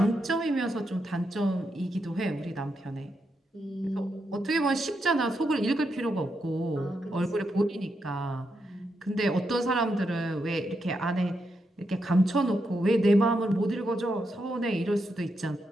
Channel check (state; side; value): normal; both; correlation 0.83